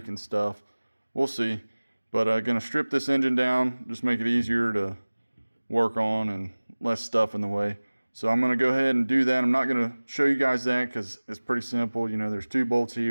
and stuff. We'll see. But I'm going to strip this engine down, just make it easier to work on and less stuff in the way. So I'm going to go ahead and do that. I'm not going to show you guys that because it's pretty simple. You know, there's 2 bolts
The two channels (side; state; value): both; inverted; correlation -1.00